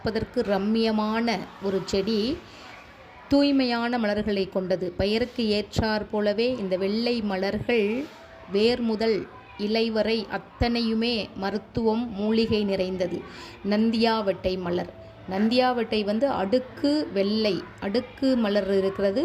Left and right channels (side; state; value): both; identical; correlation 1.00